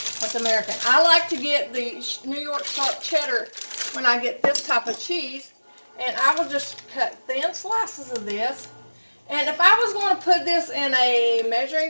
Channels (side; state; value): both; inverted; correlation -1.00